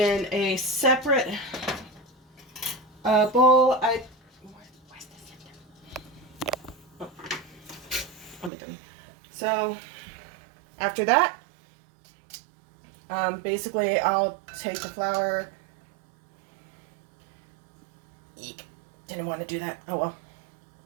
a separate bowl, I'm done. So after that, basically I'll take the flour. Eek, didn't want to do that. Oh well.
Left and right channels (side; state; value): left; drops out; at 8.5 s